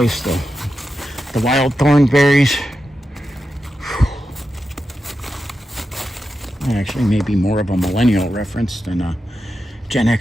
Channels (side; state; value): both; normal; correlation 0.89